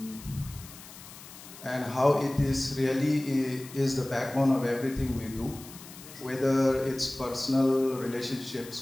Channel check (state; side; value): noise; left; hiss, 17 dB below the sound